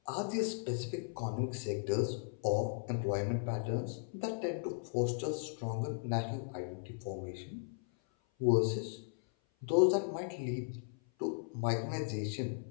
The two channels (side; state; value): right; silent; 53 dB below the other